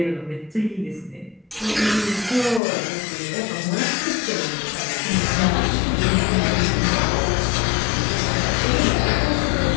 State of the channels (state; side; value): drops out; right; at 2.6 s